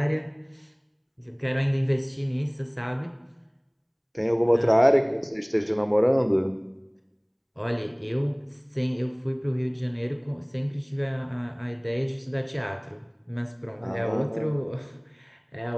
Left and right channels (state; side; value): identical; both; correlation 1.00